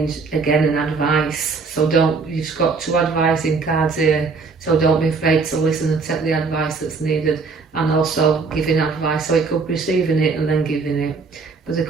again, an advice. So you've got 2 advising cards here, so don't be afraid to listen and take the advice that's needed, and also giving advice. So it could be receiving it and then giving it. But the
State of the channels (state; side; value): quieter; left; 4.6 dB